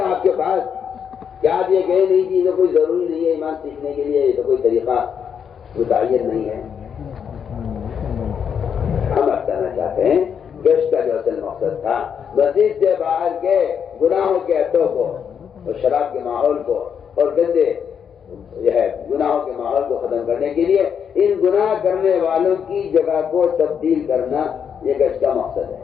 آپ کے پاس؟ کیا آپ یہ کہیں نہیں کہ یہ تو کوئی ضروری نہیں ہے ایمان سیکھنے کے لیے, یہ تو کوئی طریقہ متعین نہیں ہے. ہم بتانا چاہتے ہیں گشت کا جو اصل مقصد تھا مسجد سے باہر کے گناہوں کے اڈوں کو اور شراب کے ماحول کو اور گندے جو ہے گناہوں کے ماحول کو ختم کرنے کے لیے ان گناہ کرنے والوں کی جگہ کو تبدیل کرنا یہ گشت کا مقصد ہے.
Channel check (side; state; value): right; quieter; 7.5 dB